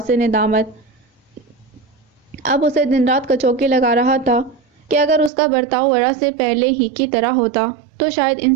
ندامت اب اسے دن رات کچوکے لگا رہا تھا کہ اگر اس کا برتاؤ ورا سے پہلے ہی کی طرح ہوتا تو شاید ان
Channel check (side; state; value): left; drops out; at 5.3 s